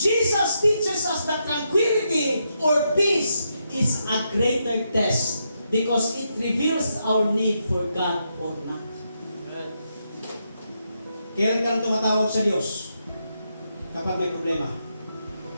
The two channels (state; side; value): inverted; both; correlation -0.82